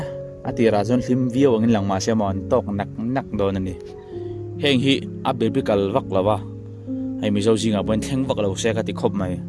ati rajon lim view angin lang ma se mon tok nak don ani heng hi a biblical vak lawa ai mi zo jinga bon thleng vak lo se ka ti khop mai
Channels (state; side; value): identical; both; correlation 1.00